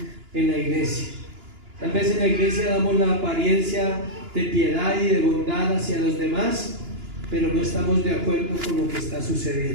en la iglesia. Tal vez en la iglesia damos la apariencia de piedad y de bondad hacia los demás, pero no estamos de acuerdo con lo que está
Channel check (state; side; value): late; left; 2.9 ms